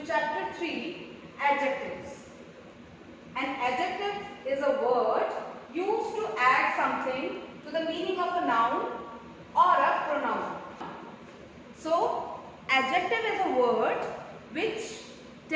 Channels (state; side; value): identical; both; correlation 1.00